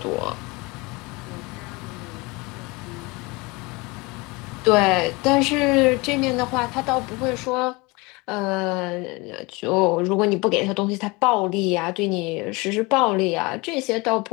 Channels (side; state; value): right; quieter; 25.4 dB